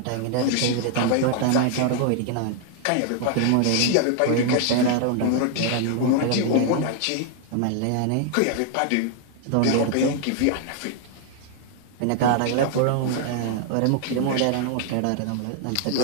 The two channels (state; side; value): different; both; correlation 0.00